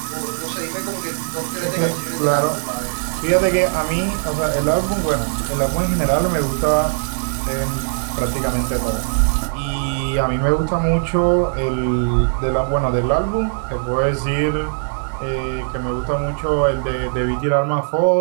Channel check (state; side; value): silent; left; digital silence